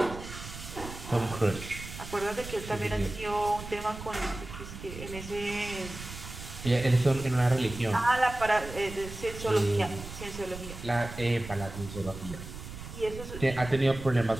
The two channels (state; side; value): noise; right; rumble, 11 dB below the sound